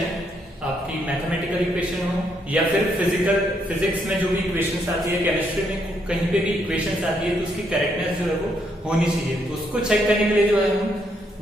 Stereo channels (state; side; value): normal; both; correlation 0.75